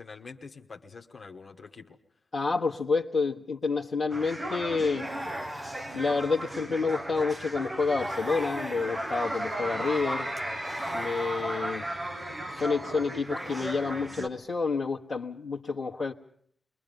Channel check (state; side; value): quieter; right; 3.0 dB